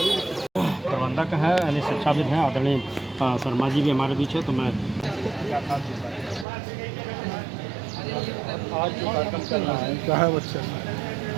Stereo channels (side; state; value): left; drops out; at 6.5 s